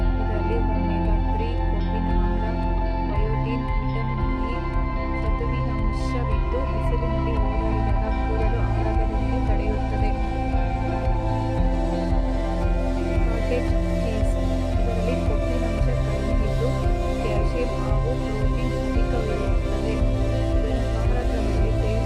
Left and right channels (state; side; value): identical; both; correlation 1.00